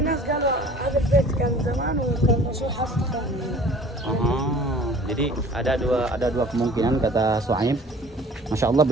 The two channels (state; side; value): normal; both; correlation 0.48